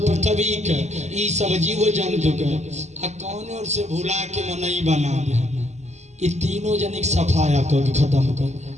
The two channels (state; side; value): late; left; 0.33 ms